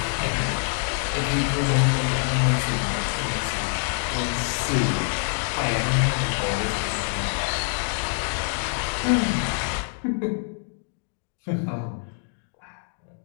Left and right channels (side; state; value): right; silent; 61 dB below the other